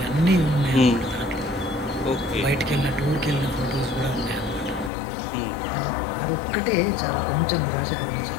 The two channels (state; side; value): drops out; right; at 4.9 s